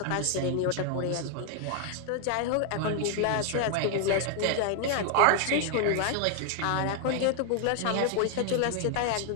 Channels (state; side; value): different; both; correlation 0.00